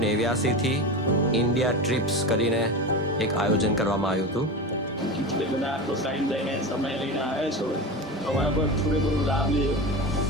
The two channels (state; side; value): normal; both; correlation 0.25